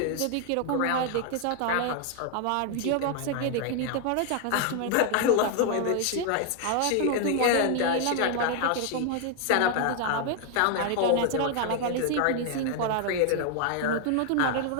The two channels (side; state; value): both; different; correlation 0.00